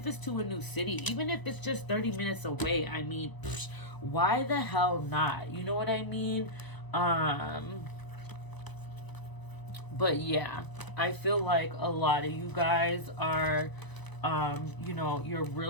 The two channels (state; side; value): late; right; 1.0 ms